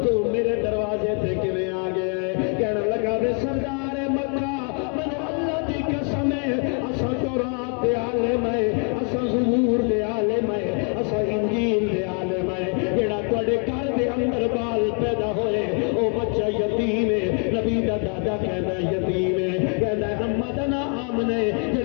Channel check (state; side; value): quieter; right; 38.9 dB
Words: تو میرے دروازے تے کیویں آ گیا ہے کہنے لگا بے سردار مکہ منو اللہ دی قسم ہے اسا تورات دے عالم ہے اسا زبور دے عالم ہے اسا انجیل دے عالم ہے جڑا تواڈے گھر دے اندر بال پیدا ہوئے او بچہ یتیم ہے نبی دا دادا کہندا یتیم ہے کہندا اما دا نام نے